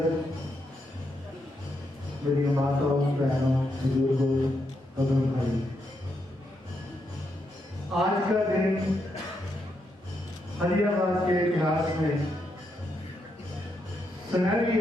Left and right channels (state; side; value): normal; both; correlation 0.81